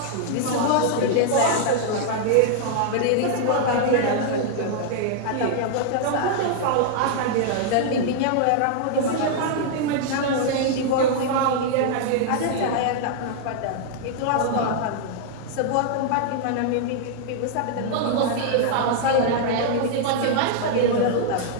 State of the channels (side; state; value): both; different; correlation -0.01